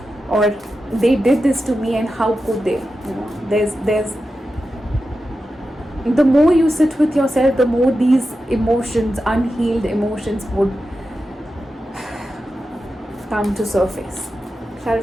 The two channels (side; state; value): both; normal; correlation 0.91